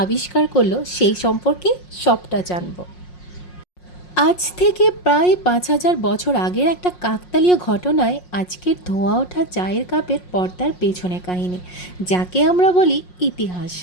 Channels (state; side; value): late; right; 5.5 ms